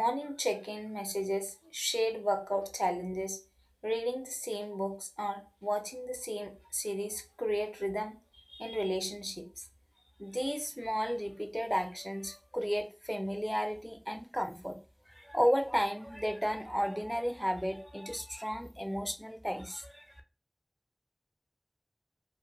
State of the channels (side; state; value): both; identical; correlation 1.00